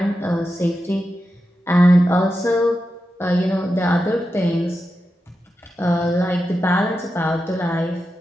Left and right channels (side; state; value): both; normal; correlation 0.89